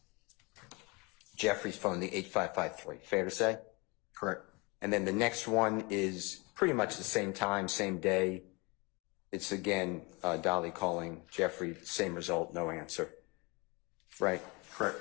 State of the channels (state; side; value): quieter; right; 27.8 dB